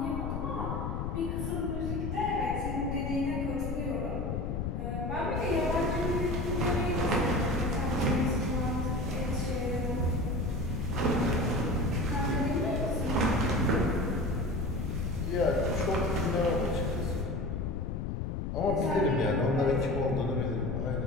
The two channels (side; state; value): left; noise; rumble, 2 dB below the sound